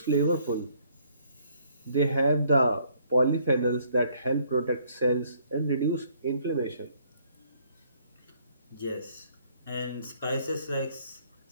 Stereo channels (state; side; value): inverted; both; correlation -0.65